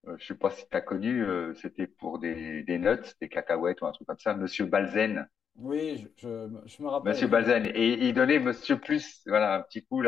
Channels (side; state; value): right; quieter; 7.2 dB